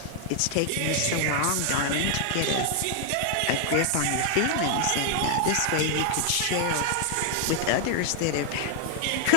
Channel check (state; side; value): different; both; correlation 0.00